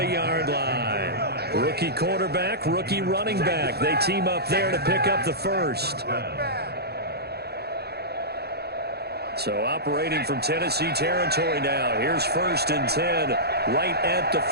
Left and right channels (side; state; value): left; late; 0.47 ms